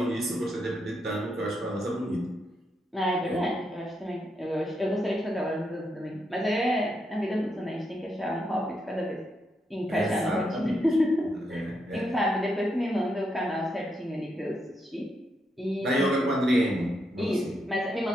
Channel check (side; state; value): both; normal; correlation 0.81